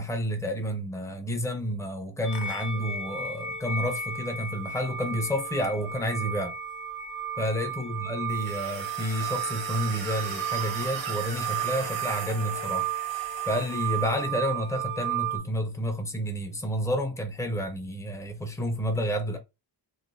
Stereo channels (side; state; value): both; normal; correlation 0.37